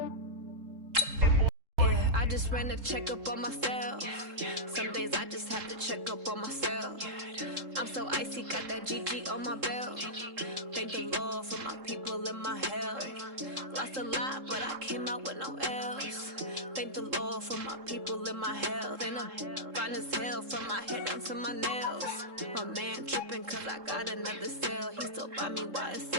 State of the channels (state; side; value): late; left; 3.7 ms